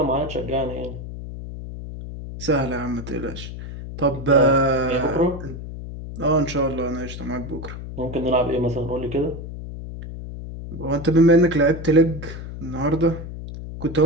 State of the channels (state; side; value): noise; left; hum, 10 dB below the sound